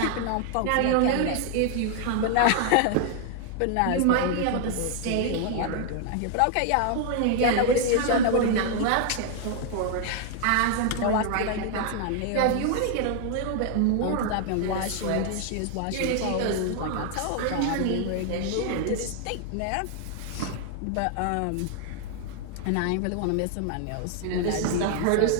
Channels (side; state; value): both; different; correlation 0.00